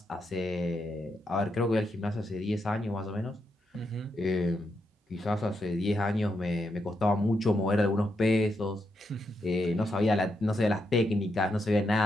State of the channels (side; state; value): both; normal; correlation 0.82